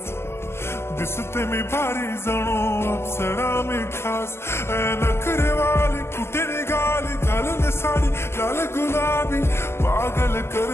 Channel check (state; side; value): late; right; 0.12 ms